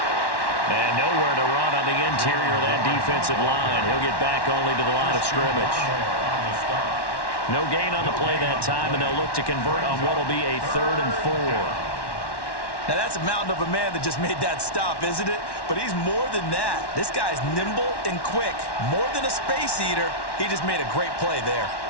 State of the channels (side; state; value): right; late; 1.1 ms